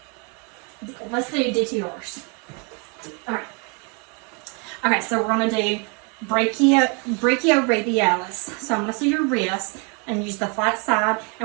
Let's do DTRs. Alright. Okay, so we're gonna do brachioradialis. So I'm gonna see your wrist and use the flat side,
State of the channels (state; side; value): quieter; left; 34.4 dB